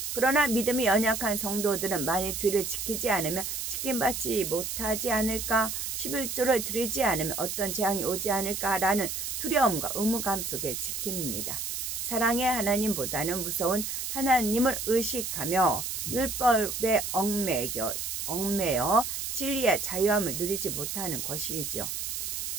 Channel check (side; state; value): right; noise; hiss, 4 dB below the sound